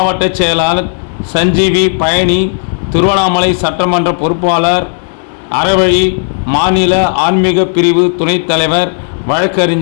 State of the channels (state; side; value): silent; right; digital silence